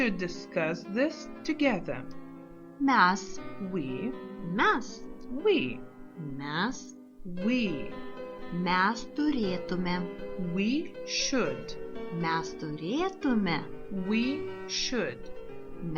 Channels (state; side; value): identical; both; correlation 1.00